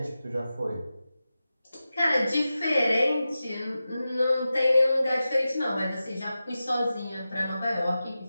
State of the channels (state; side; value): inverted; both; correlation -0.93